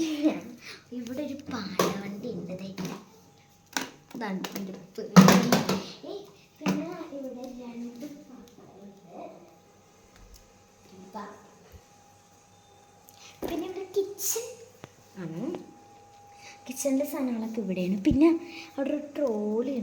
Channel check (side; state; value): both; identical; correlation 1.00